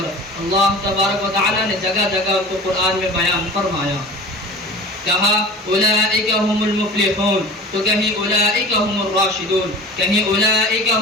اللہ تبارک و تعالی نے جگہ جگہ ان کو قرآن میں بیان فرمایا. کہا اولئک هم المفلحون، تو کہیں اولئک هم الراشدون، کہیں اولئک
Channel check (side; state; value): both; normal; correlation 0.38